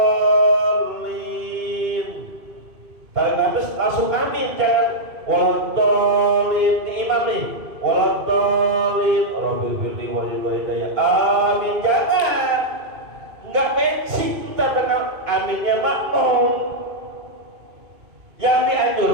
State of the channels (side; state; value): left; late; 2.5 ms